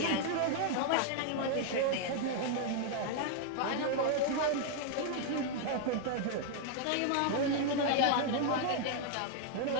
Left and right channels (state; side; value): different; both; correlation 0.00